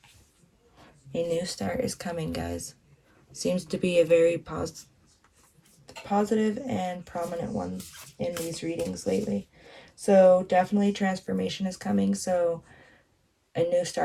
A new start is coming, guys. Seems to be a very positive and prominent one in these readings lately. So definitely transformation is coming. So a new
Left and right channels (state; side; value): identical; both; correlation 1.00